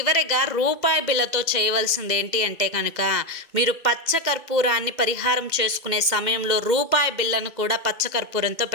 రూపాయి బిళ్ళతో చేయవలసింది ఏంటి అంటే కనుక, మీరు పచ్చకర్పూరాన్ని పరిహారం చేసుకునే సమయంలో రూపాయి బిళ్ళను కూడా పచ్చకర్పూరంతో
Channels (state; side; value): late; left; 2.0 ms